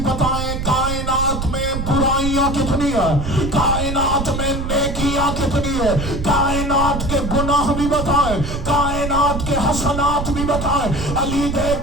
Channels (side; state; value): right; noise; rumble, 4 dB below the sound